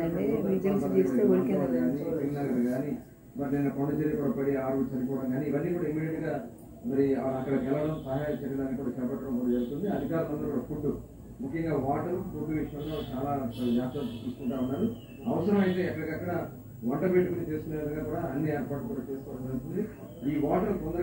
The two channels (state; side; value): identical; both; correlation 1.00